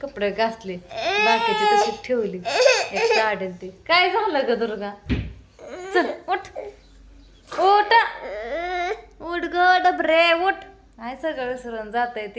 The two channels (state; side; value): identical; both; correlation 1.00